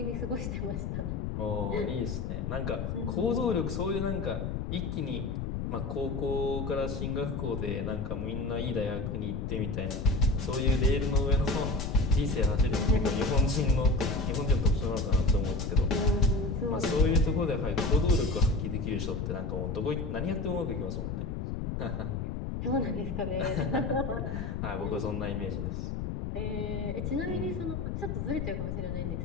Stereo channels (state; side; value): noise; left; rumble, 3 dB below the sound